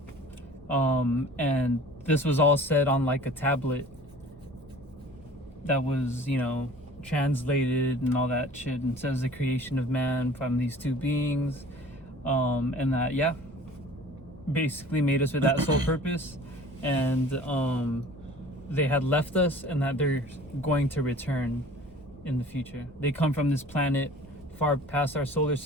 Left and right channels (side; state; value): both; normal; correlation 0.46